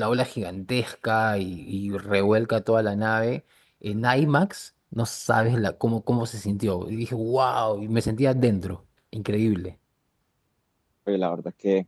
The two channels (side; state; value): both; identical; correlation 1.00